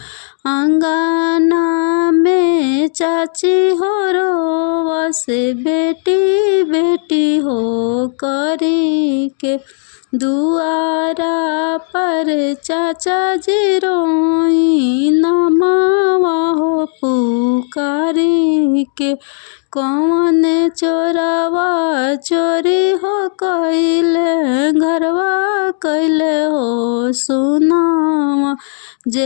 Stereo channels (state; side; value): silent; right; digital silence